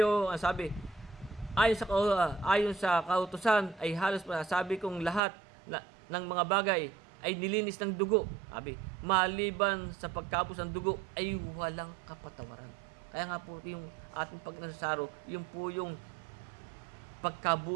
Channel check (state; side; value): drops out; left; at 5.2 s